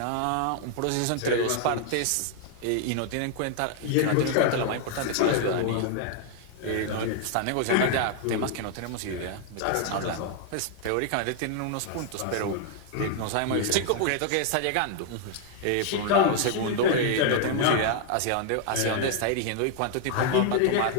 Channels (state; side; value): different; both; correlation 0.00